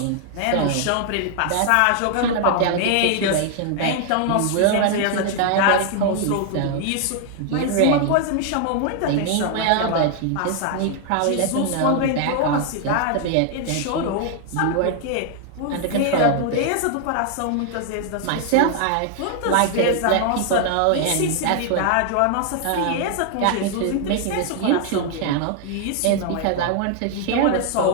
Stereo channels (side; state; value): both; different; correlation 0.00